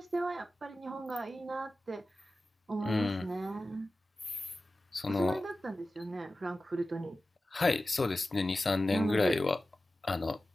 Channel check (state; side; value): normal; both; correlation 0.95